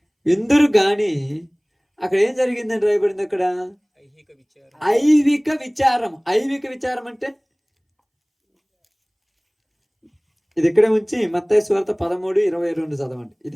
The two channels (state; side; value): identical; both; correlation 1.00